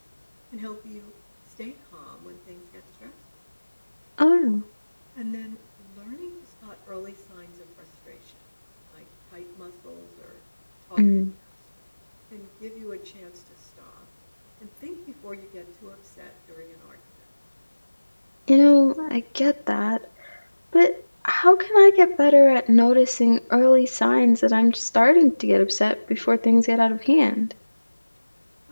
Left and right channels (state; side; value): inverted; both; correlation -1.00